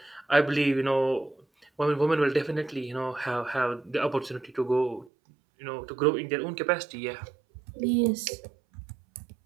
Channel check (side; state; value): left; drops out; at 5.1 s